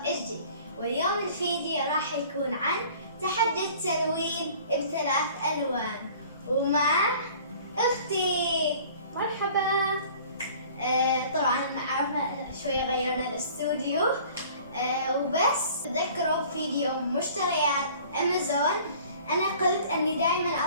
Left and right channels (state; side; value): inverted; both; correlation -0.49